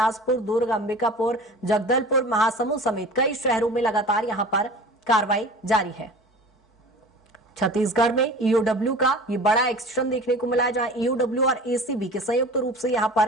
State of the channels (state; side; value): normal; both; correlation 0.39